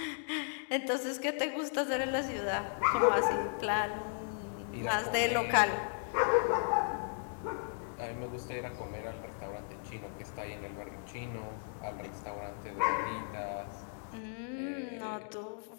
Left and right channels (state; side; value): silent; right; digital silence